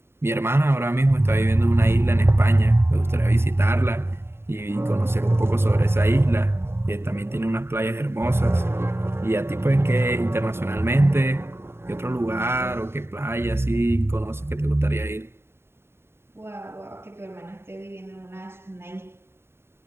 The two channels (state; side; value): late; left; 0.12 ms